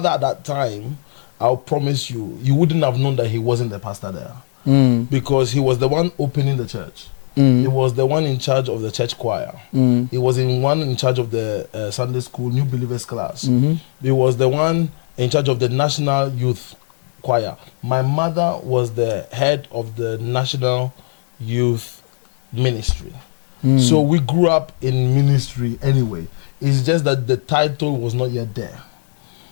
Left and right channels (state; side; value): silent; right; digital silence